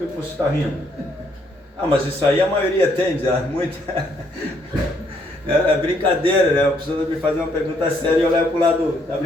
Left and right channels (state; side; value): normal; both; correlation 0.70